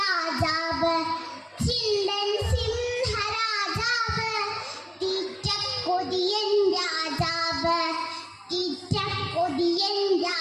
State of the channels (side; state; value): both; identical; correlation 1.00